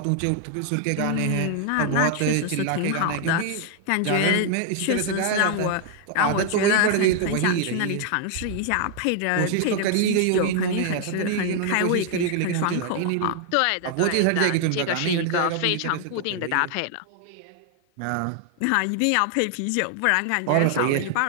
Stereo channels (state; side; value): different; both; correlation 0.00